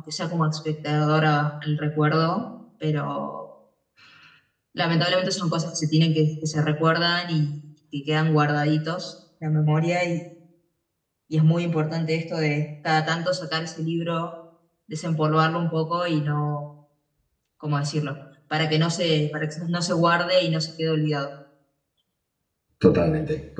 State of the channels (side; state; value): both; identical; correlation 1.00